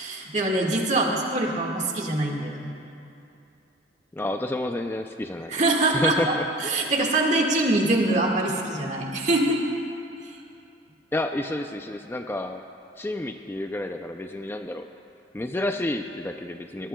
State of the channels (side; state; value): both; normal; correlation 0.45